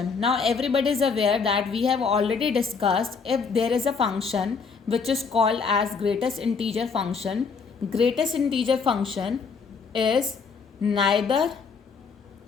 Now everybody is aware that we have already discussed if there is a function which is called as greatest integer function. Greatest integer function is neither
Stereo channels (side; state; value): right; quieter; 5.3 dB